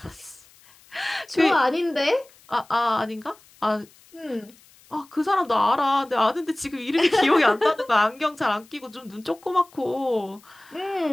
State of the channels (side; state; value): left; noise; hiss, 27 dB below the sound